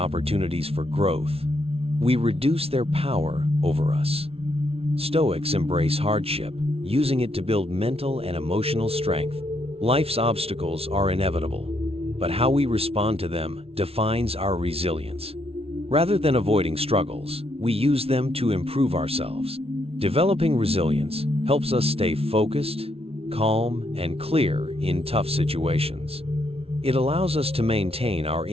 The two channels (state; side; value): late; left; 0.29 ms